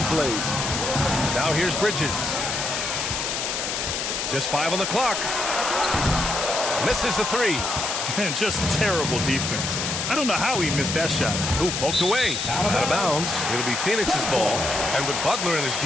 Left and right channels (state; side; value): noise; left; hiss, 2 dB below the sound